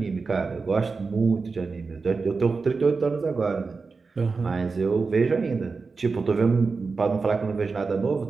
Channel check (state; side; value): quieter; left; 4.4 dB